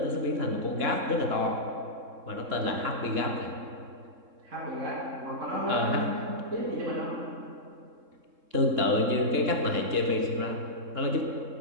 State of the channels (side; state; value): left; late; 3.7 ms